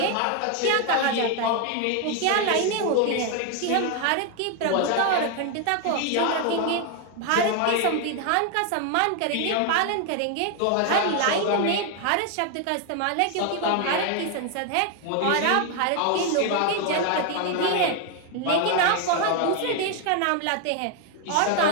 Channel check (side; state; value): both; different; correlation 0.01